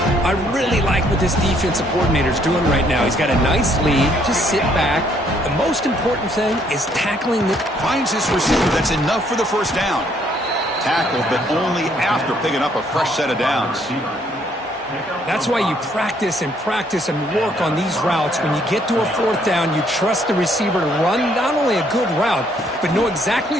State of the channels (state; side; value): normal; both; correlation 0.67